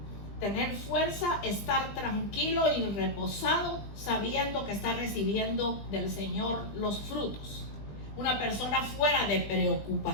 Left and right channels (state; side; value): late; right; 20 ms